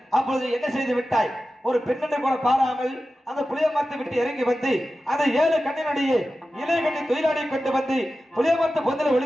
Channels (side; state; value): both; normal; correlation 0.94